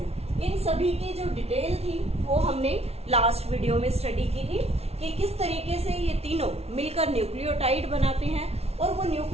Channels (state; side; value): late; left; 0.30 ms